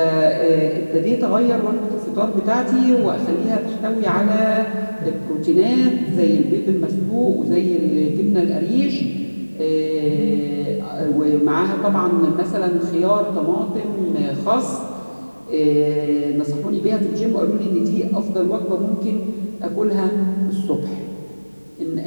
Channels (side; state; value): both; inverted; correlation -1.00